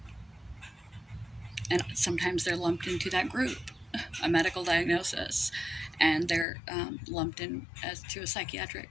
And sometimes they're lumped into that group, a medical diagnosis, and they're lumped in as to a psychiatric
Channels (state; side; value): drops out; right; at 6.5 s